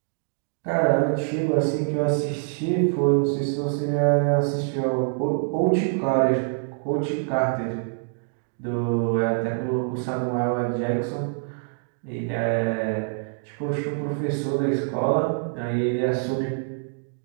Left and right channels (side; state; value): left; silent; 62 dB below the other